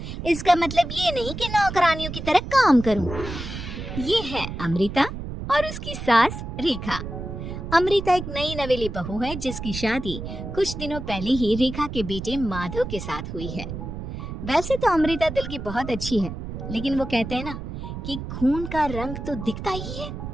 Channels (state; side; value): noise; right; rumble, 7 dB below the sound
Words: इसका मतलब ये नहीं कि नौकरानियों की तरह काम करूँ। ये है अमृता और उसकी सास रेखा। अमृता एक नई नवेली बहू है जिसकी शादी कुछ दिनों पहले ही रेखा के बेटे माधव के साथ हुई है। वैसे तो अमृता दिल की बहुत अच्छी है, लेकिन वो कहते हैं ना कि खून का रंग तो दिखता ही है।